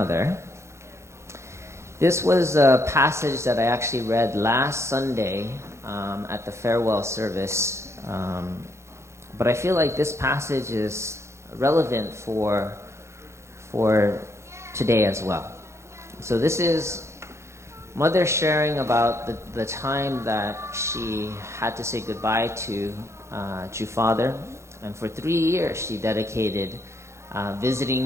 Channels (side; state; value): left; late; 0.13 ms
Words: This was a passage that I actually read last Sunday at the farewell service. But I feel like this passage is relevant for today as well. So this is Mother sharing about the time that she had to say goodbye to True Father. And for 3 years, she dedicated